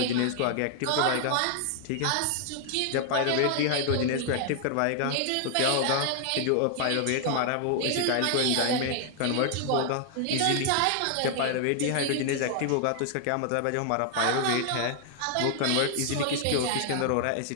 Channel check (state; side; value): different; both; correlation 0.00